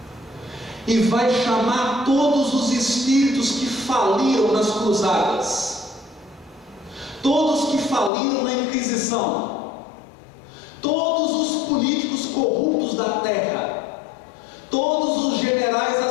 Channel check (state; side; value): drops out; right; at 8.1 s